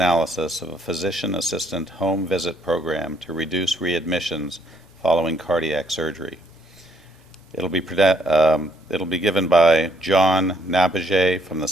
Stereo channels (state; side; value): normal; both; correlation 0.68